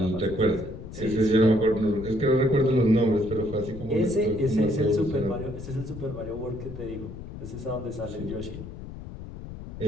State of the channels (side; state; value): left; noise; rumble, 11 dB below the sound